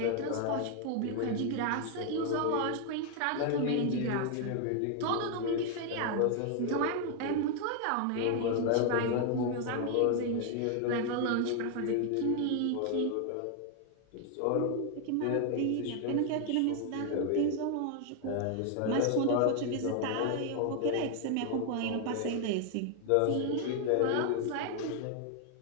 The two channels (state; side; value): different; both; correlation 0.00